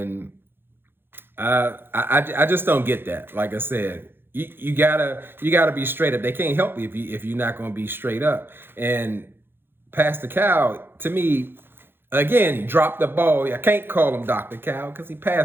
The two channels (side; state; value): left; late; 0.10 ms